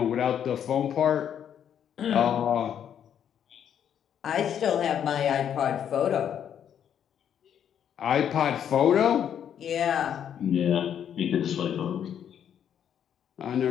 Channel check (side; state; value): right; quieter; 9.1 dB